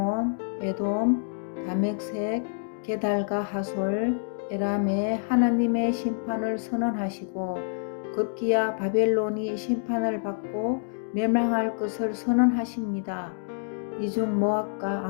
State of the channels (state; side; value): silent; right; digital silence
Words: 에돔, 다멕색, 게달과 하솔, 에람에 하나님의 심판을 선언하시고 급기야 바벨론이 심판을 받고 멸망할 것을 선언하십니다. 이중 모압과